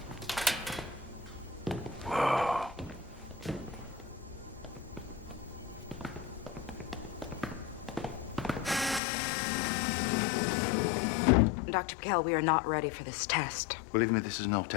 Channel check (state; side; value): drops out; right; at 9.0 s